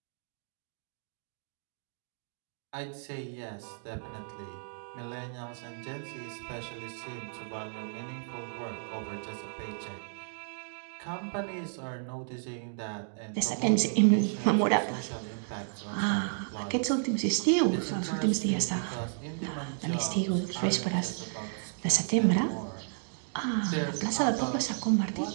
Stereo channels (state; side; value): silent; left; digital silence